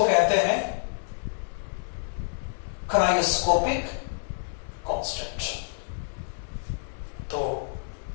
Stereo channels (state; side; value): silent; right; digital silence